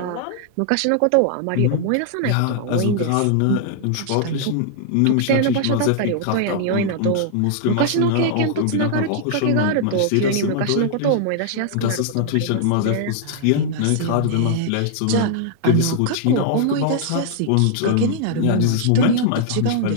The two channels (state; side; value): different; both; correlation -0.01